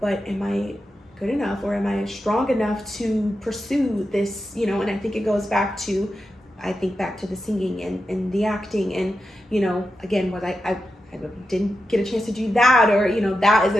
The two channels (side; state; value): both; normal; correlation 0.89